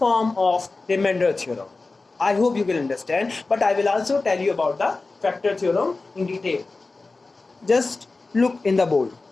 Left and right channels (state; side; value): quieter; right; 3.6 dB